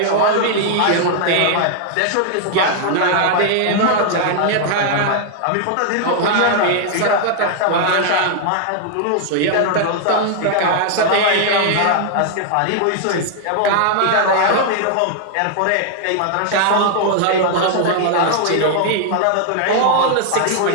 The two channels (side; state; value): both; different; correlation 0.00